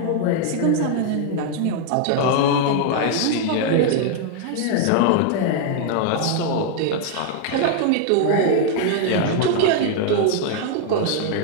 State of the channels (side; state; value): both; different; correlation 0.00